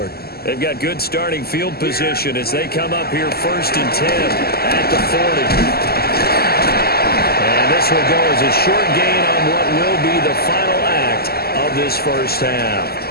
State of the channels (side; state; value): right; late; 0.45 ms